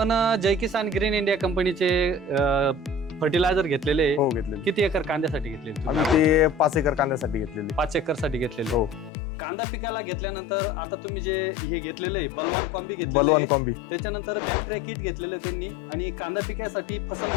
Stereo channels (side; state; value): right; drops out; at 9.1 s